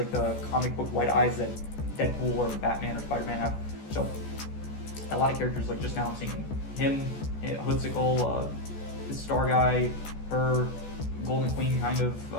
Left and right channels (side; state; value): right; late; 14 ms